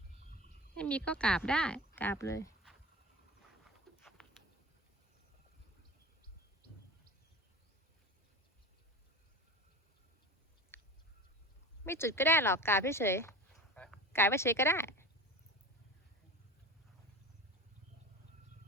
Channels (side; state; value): both; normal; correlation 0.32